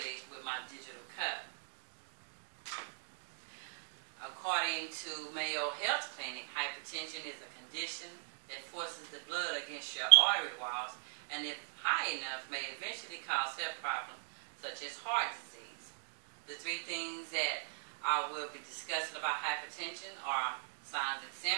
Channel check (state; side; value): silent; left; digital silence